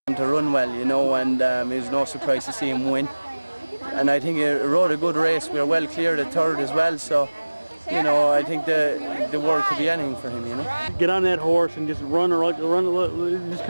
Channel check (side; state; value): both; inverted; correlation -1.00